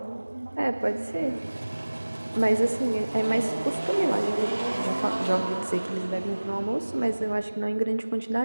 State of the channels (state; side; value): inverted; both; correlation -1.00